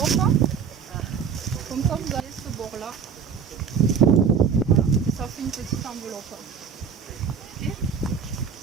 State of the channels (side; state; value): left; quieter; 6.8 dB